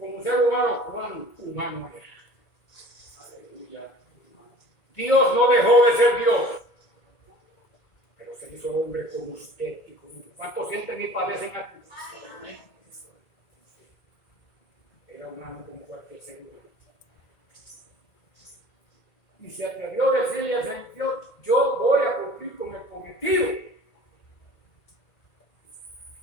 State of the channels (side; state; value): right; late; 1.9 ms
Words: ¿cuán humano era? Aleluya. Dios no dejó de ser Dios, pero se hizo hombre como usted y como yo. ¿Cuántos sienten y padecen aquí? Era humano como cualquier ser humano. Y se atrevió a decirle al Señor, yo voy a cumplir con el cometido.